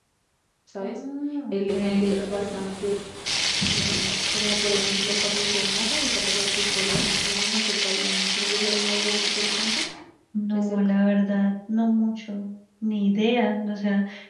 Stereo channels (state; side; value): identical; both; correlation 1.00